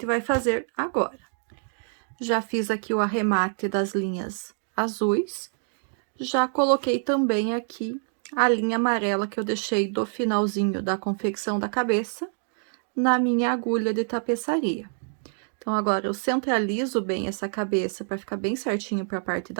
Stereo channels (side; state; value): left; silent; 61 dB below the other